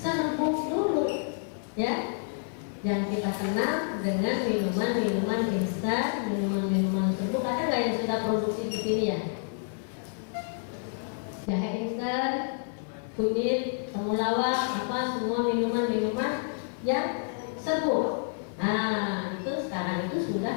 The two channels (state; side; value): silent; right; digital silence